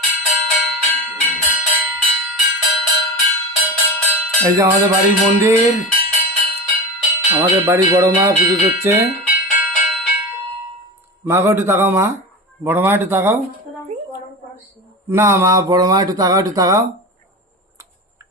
এই যে আমাদের বাড়ির মন্দির, আমাদের বাড়ির বড় মা পুজো দিচ্ছে। মা গো একটু তাকাও, মা বড় মা একটু তাকাও। না মা, বড় মা একটু তাকাও, একটু তাকাও,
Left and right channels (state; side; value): normal; both; correlation 0.26